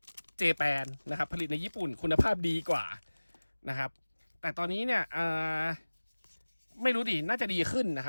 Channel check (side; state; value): both; inverted; correlation -1.00